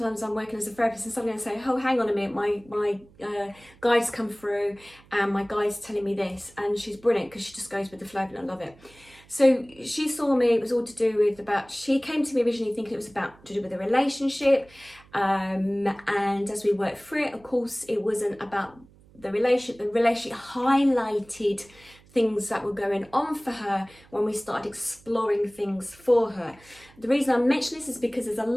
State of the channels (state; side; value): noise; right; hum, 26 dB below the sound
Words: working as a therapist, and suddenly I say, oh, hang on a minute, my guide's come through, and my guide's telling me this, and she's brilliant because she just goes with the flow, and I love it. So she saw me, it was all to do with she came to me originally thinking it was to do with a relationship, and as we worked through it, of course, it wasn't about the relationship. The relationship highlighted things that were going on for her when we started exploring things for her. The reason I mention this is because there's a